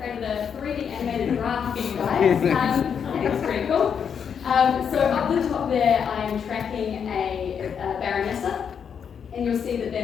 3D animated graph for you guys. I think it's pretty cool. So up the top there, I'm tracking a baronessa, and you'll see that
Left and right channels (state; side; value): quieter; right; 7.3 dB